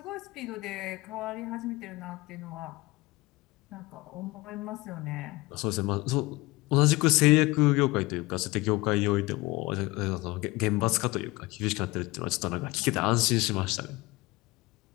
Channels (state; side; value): quieter; right; 21.7 dB